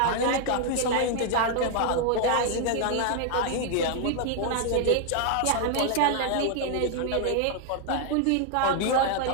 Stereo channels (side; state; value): both; different; correlation 0.00